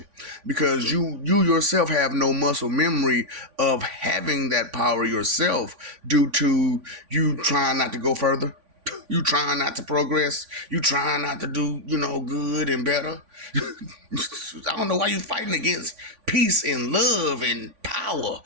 because you yourself have no muscle memory of having that power yourself due to you trying not to go further. You trying not to progress. You trying not to do, good and better. I don't know why you fighting against peace and love and power,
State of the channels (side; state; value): left; late; 3.5 ms